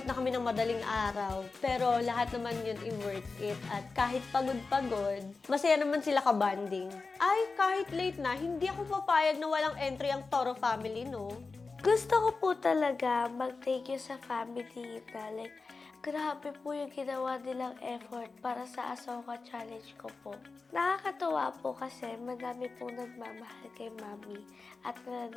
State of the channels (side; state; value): right; quieter; 4.1 dB